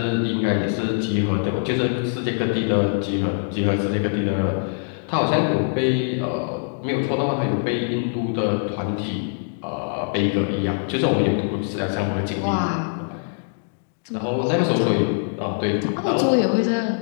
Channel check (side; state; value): right; silent; digital silence